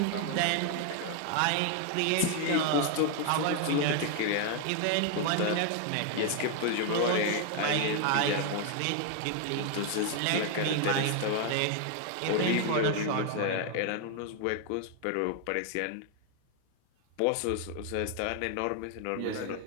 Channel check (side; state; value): both; different; correlation 0.00